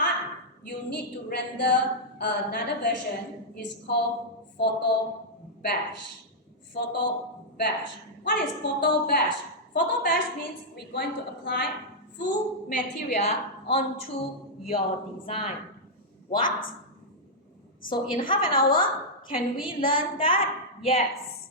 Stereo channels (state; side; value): normal; both; correlation -0.07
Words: you need to render another version. It's called photo bash. Photo bash. What is photo bash? Photo bash means we're going to apply full material onto your design. What? So in half an hour, can we learn that?